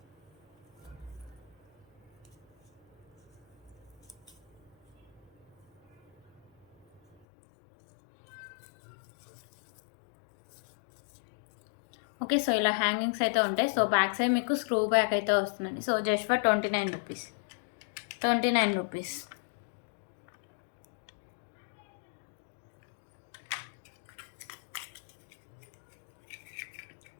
ఓకే. సో ఇలా హ్యాంగింగ్స్ అయితే ఉంటాయి. సో బ్యాక్ సైడ్ మీకు స్క్రూ బ్యాక్ అయితే వస్తుందండి. So just for 29 rupees. 29 rupees.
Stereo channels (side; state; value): right; drops out; at 7.2 s